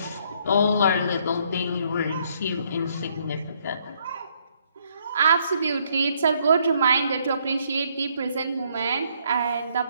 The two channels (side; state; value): both; inverted; correlation -0.69